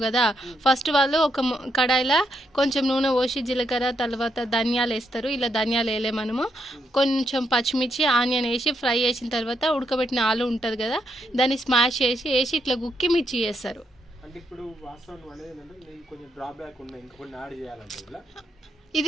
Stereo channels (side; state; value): both; normal; correlation 0.79